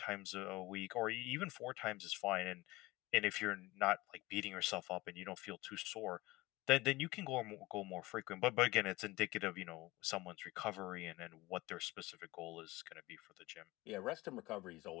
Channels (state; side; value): quieter; right; 20.6 dB